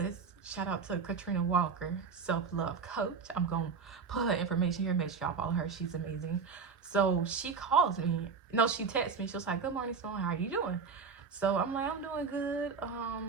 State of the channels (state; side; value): quieter; left; 5.5 dB